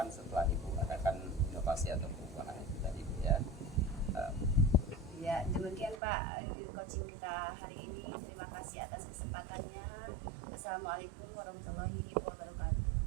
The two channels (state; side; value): drops out; left; at 6.0 s